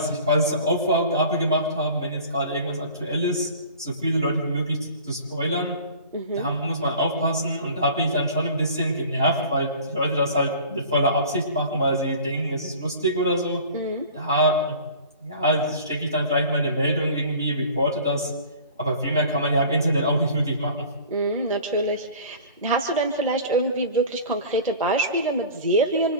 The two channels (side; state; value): both; inverted; correlation -0.43